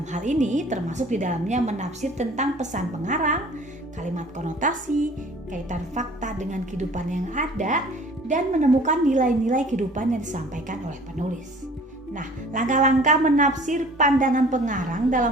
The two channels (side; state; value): both; normal; correlation 0.49